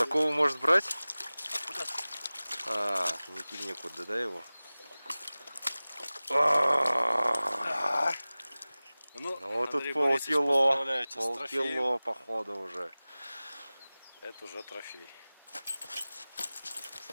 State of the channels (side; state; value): both; inverted; correlation -0.98